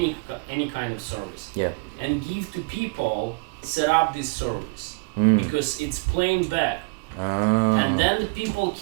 kind of service. Yeah. And give to people set up this service because it's playing back. And then the people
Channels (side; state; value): left; quieter; 31.4 dB